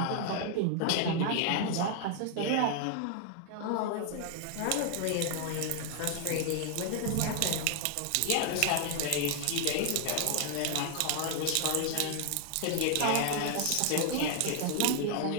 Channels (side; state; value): both; different; correlation 0.00